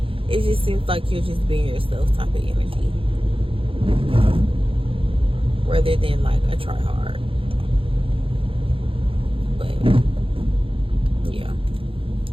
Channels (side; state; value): left; late; 0.26 ms